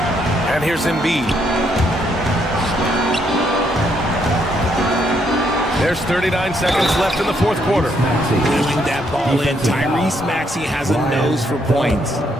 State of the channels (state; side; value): normal; both; correlation 0.73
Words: And here's Embiid. There's 39 seconds left in the fourth quarter. Wheeling that ball in. Tyrese Maxey has a nose for points.